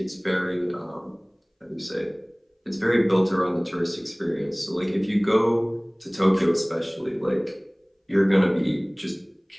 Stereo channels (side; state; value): both; identical; correlation 1.00